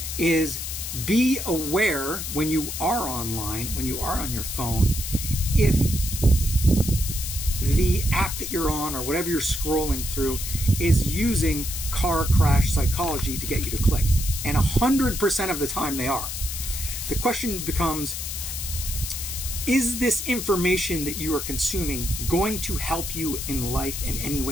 is be aware when you are online, when you are on your phone, if the app that you're on or whatever you're scrolling through is using car crash psychology to get you to click. And 100% of the time they are. The question becomes, is this information that you are consuming going to help you in life in any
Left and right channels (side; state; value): left; noise; hiss, 5 dB below the sound